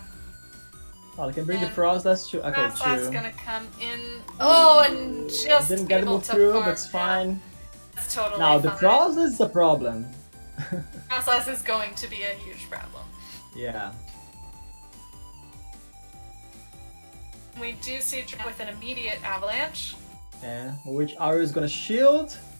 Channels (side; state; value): both; inverted; correlation -1.00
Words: Oh, I can bring the And frost. That's true. Okay, Frostlass true. gonna come in. Oh, and just Didn't get to able move to through. farm That's fine. down. That's totally Now the fine. frost is a problem. Frostlass is going to be a huge problem. Yeah. We do see Drake with an immediate avalanche. Yeah. Which Ario is gonna shield